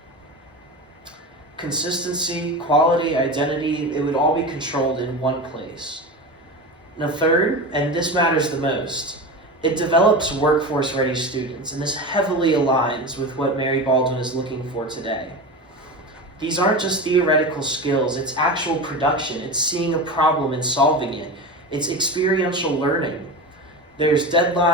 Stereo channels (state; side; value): normal; both; correlation 0.26